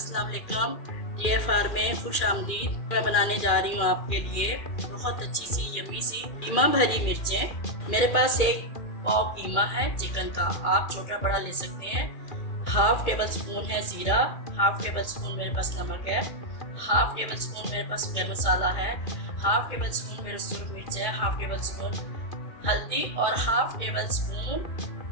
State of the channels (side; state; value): right; late; 2.4 ms